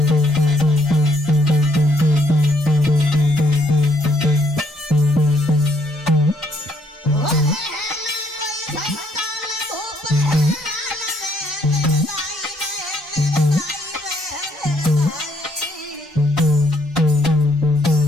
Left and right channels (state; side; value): normal; both; correlation 0.69